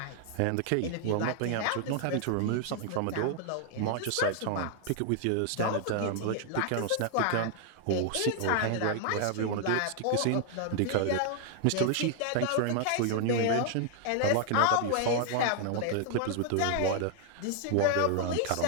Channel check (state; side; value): different; both; correlation 0.00